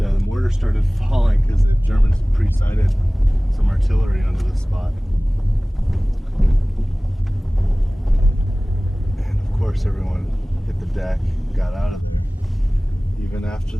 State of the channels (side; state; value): both; normal; correlation 0.98